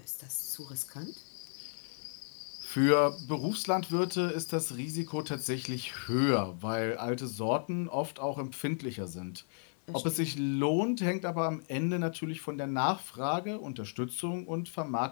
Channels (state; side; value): silent; right; digital silence